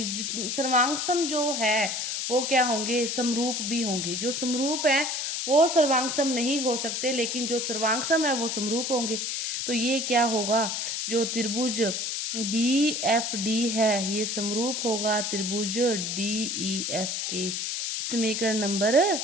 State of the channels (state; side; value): noise; left; hiss, 2 dB below the sound